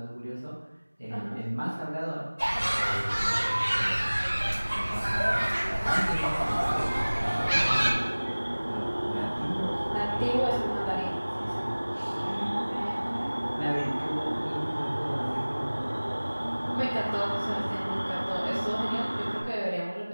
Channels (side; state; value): both; inverted; correlation -1.00